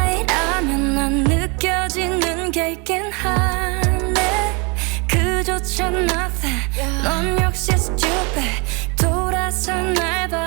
난 느껴지는 게 있긴 하네. 그조차 nothing. 넌 역시 stupid. 돌아서 날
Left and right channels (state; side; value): quieter; left; 31.2 dB